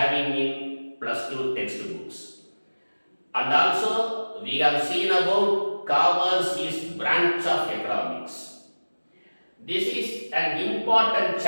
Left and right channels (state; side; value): inverted; both; correlation -1.00